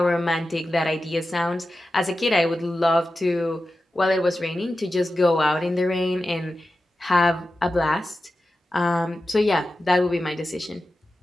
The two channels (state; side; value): normal; both; correlation 0.93